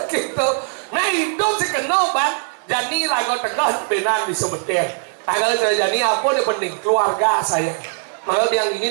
gitu nah hidup si kenal bang jadi lagu tegah benar di sebetir tanggal jadi apa yang penting keluarga saya makanya yang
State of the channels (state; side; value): silent; left; digital silence